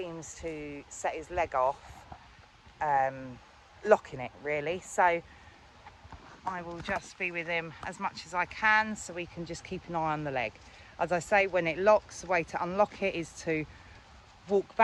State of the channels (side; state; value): both; identical; correlation 1.00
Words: to set his leg off, locking it really. So I will just be with him as much as I can so we can just keep an eye on the leg. As I say, when it locks, the way to unlock it is to walk